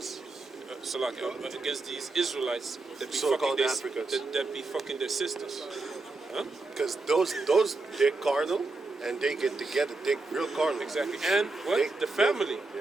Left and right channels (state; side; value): quieter; left; 3.4 dB